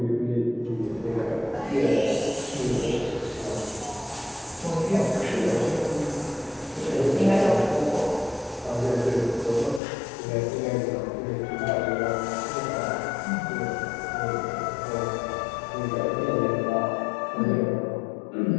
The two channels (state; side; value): drops out; right; at 9.8 s